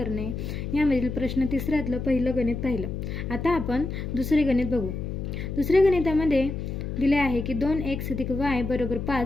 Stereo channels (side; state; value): left; noise; hum, 5 dB below the sound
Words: यामधील प्रश्न तिसऱ्यातलं पहिलं गणित पाहिलं। आता आपण दुसरे गणित बघू। दुसऱ्या गणितामध्ये दिले आहे की 2x + y =